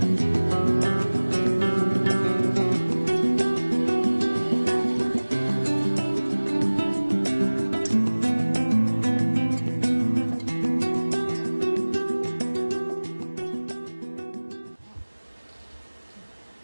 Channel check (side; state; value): both; inverted; correlation -1.00